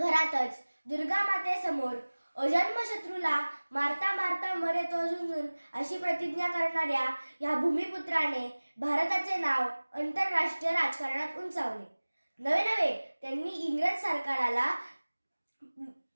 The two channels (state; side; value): inverted; both; correlation -1.00